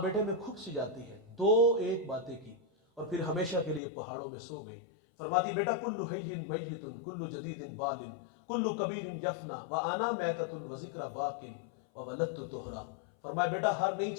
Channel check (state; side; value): drops out; right; at 3.8 s